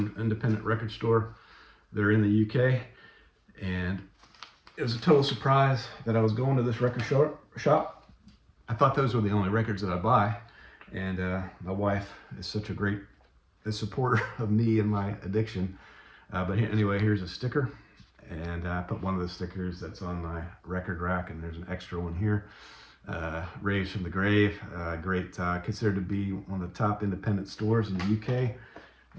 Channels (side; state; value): both; identical; correlation 1.00